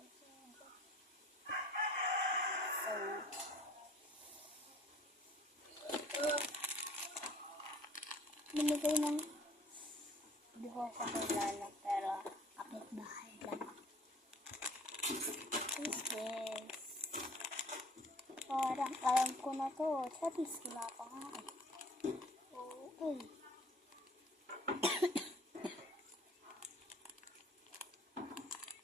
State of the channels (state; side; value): normal; both; correlation 0.53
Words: siya. So, ito. Binigay ng hindi ko kakilala pero kapit bahay lang. This is parang alam ko na to. Satis wala pa nga eh. Okay.